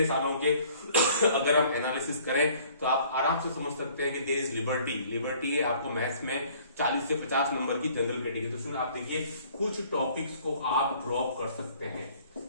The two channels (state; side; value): inverted; both; correlation -0.56